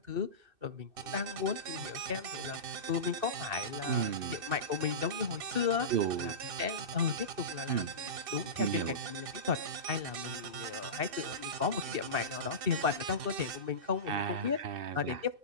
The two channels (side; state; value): left; late; 2.6 ms